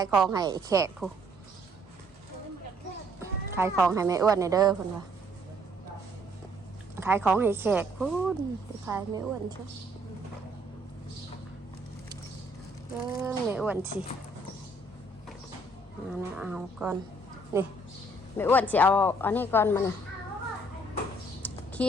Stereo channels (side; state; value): both; normal; correlation 0.64